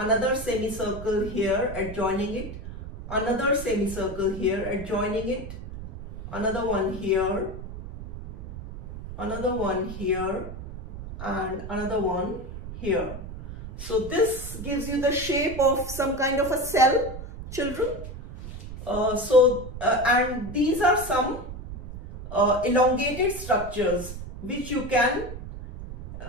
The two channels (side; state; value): right; noise; rumble, 10 dB below the sound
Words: semicircle here adjoining it, another semicircle here adjoining it, another one here, another one here, and another one here. So this gives you the shape of some kind of a cell, children. And these are some elongated structures which you can